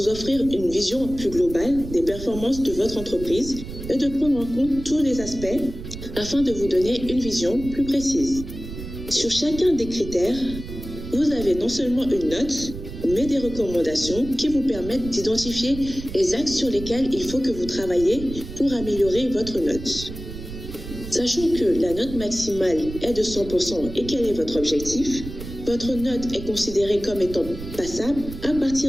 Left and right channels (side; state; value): right; noise; rumble, 11 dB below the sound